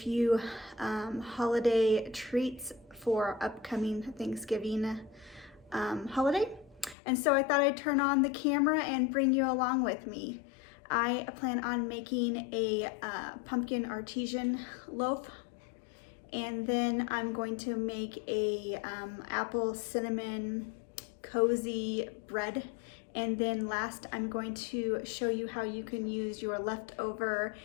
holiday treats for upcoming Thanksgiving holiday. And so I thought I'd turn on the camera and bring you along with me. I plan on making a pumpkin artesian loaf, and then I'm going to make a apple cinnamon cozy bread. And then last, I'm going to show you how you can use your leftover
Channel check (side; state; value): right; drops out; at 7.0 s